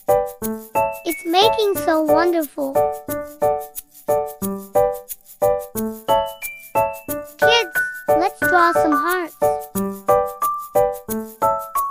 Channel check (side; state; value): both; identical; correlation 1.00